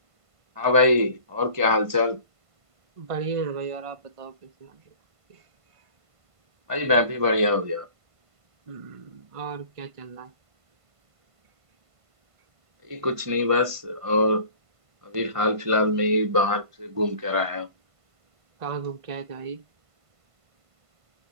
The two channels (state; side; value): late; left; 1.5 ms